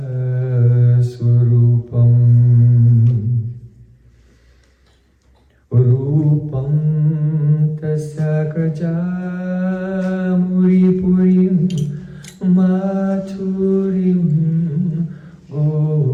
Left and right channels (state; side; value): identical; both; correlation 1.00